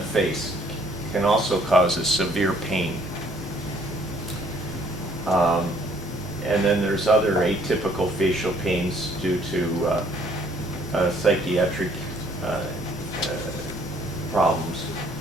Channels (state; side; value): normal; both; correlation 0.62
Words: can also cause a severe pain. And then there's other atypical facial pains due to psychiatric problems.